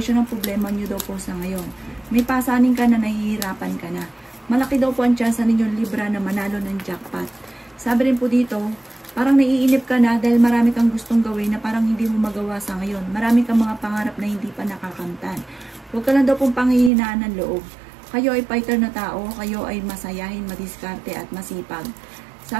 ang problema nyo daw po sa ngayon. May pasanin ka na nahihirapan ka na. Malaki daw po ang tsansa ninyong Libra na manalo ng jackpot. Sabi rin po dito, parang naiinip ka na dahil marami kang gustong gawin na parang hindi mo magawa sa ngayon. Marami kang mga pangarap na hindi pa nakakamtan. Huwag ka lang daw pong panghihinaan ng loob. Kayo ay fighter na tao, kayo ay masayahin, madiskarte at masipag.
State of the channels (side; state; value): left; drops out; at 16.9 s